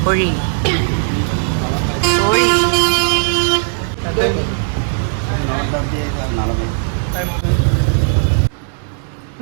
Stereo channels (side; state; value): left; silent; digital silence